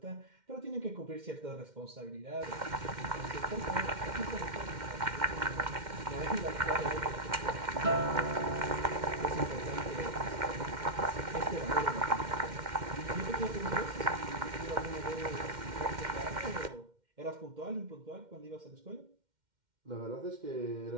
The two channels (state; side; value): late; left; 2.1 ms